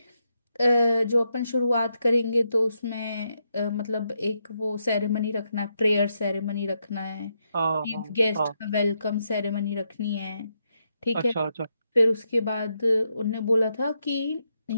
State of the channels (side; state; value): both; inverted; correlation -0.82